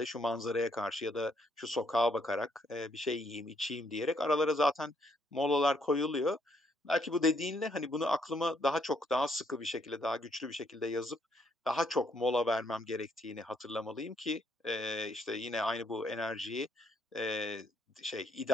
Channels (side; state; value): both; normal; correlation 0.71